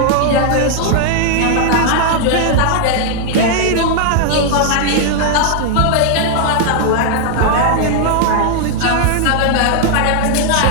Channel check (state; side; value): different; both; correlation 0.00